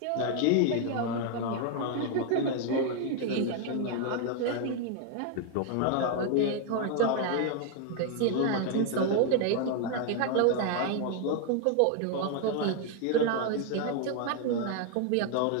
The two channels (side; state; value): both; different; correlation 0.00